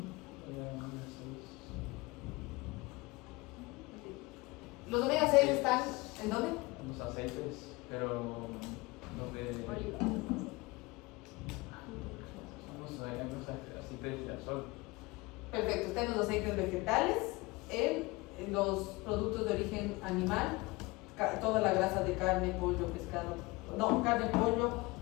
Los omega 6 están ¿en dónde? Los aceites, pero los de... Oliva. Los aceites de girasol. Perfecto, están los aceites vegetales, en los productos de origen animal, toda la grasa de carne, pollo, pescado, no, carne, pollo,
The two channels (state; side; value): quieter; right; 23.3 dB